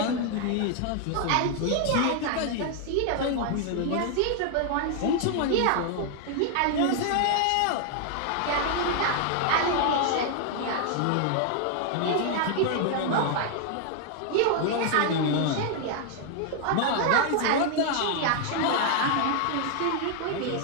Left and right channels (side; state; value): both; different; correlation 0.00